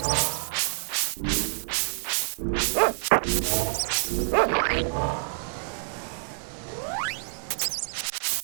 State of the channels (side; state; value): left; silent; digital silence